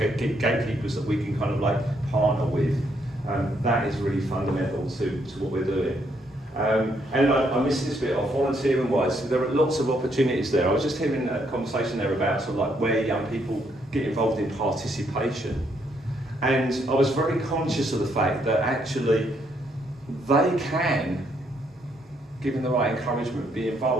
that we can partner with. That is really fundamental to what we're doing. And I missed this bit off, volunteering-wise, there are lots of opportunities there. I was just hearing a conversation there about where young people get involved in participation. And I was very conscious of the fact that actually they can, given the right encouragement, be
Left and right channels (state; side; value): normal; both; correlation 0.73